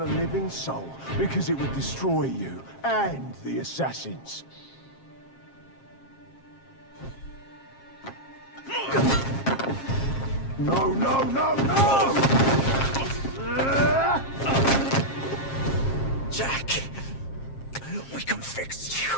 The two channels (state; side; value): late; right; 7.4 ms